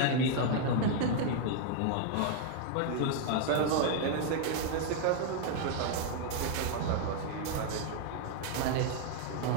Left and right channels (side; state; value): both; different; correlation 0.00